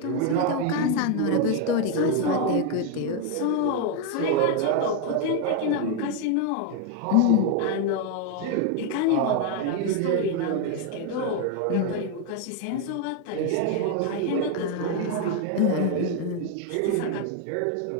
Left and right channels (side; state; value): both; different; correlation 0.01